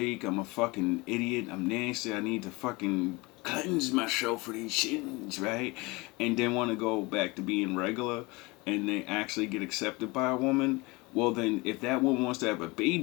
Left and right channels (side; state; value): right; quieter; 24.4 dB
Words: I'm a fucking idiot, I'm nasty, I need to fucking cleanse myself for these sins, right? And then want to go back to being regular and they actually get accepted by a woman, well then, if that woman wants to have a